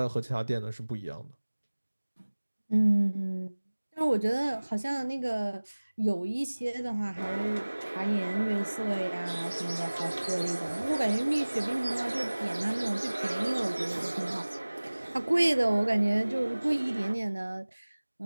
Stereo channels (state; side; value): inverted; both; correlation -1.00